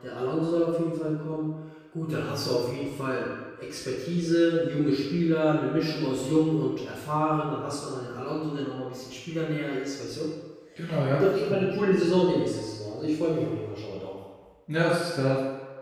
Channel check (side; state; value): both; identical; correlation 1.00